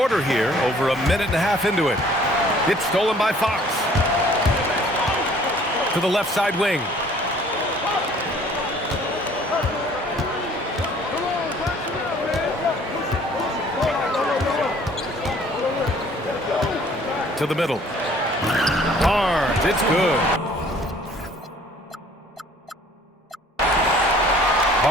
here, over a minute and a half into it. It's stolen by Fox. To the left side wing. To the middle. Barnes, it's good.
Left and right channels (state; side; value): normal; both; correlation 0.55